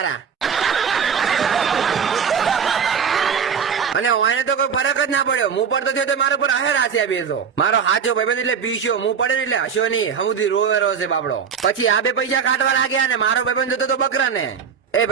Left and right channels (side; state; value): left; quieter; 6.9 dB